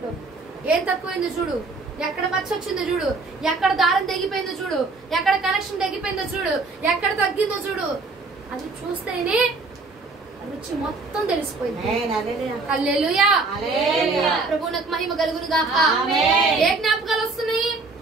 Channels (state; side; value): quieter; left; 3.8 dB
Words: ఏం తక్కువైందో చూడు, ఎక్కడ మచ్చ వచ్చిందో చూడు, ఎక్కడ దారం తెగిపోయిందో చూడు, ఎక్కడ కనెక్షన్ తెగిపోయిందో చూడు, ఎక్కడ తగ్గిందో చూడు. అది చూస్తేనే రుచి మొత్తం తెలిసిపోయింది. హల్లెలూయా, ప్రభువునకు మహిమ కలుగును గాక. ఏ జ్ఞాపకాలు వస్తున్నాయి?